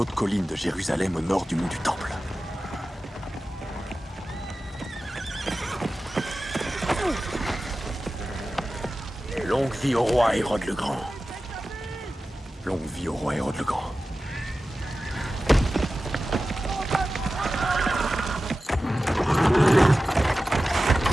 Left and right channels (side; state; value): both; normal; correlation 0.94